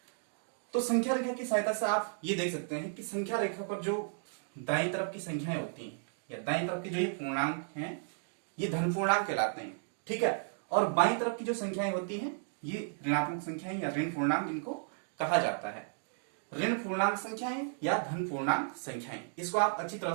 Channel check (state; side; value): silent; left; digital silence